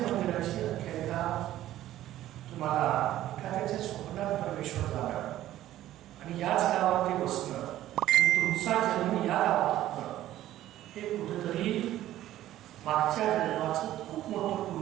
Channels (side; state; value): left; quieter; 13.7 dB